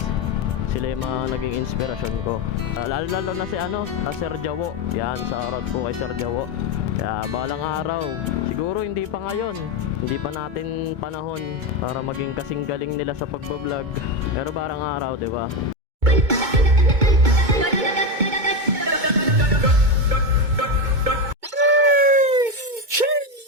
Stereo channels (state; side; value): late; left; 2.2 ms